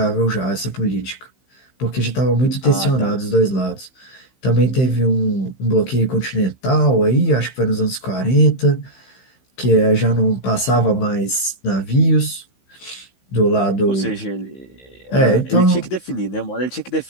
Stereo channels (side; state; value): right; late; 15 ms